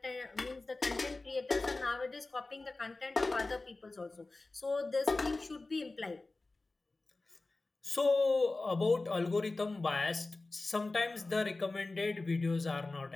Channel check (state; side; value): quieter; right; 3.3 dB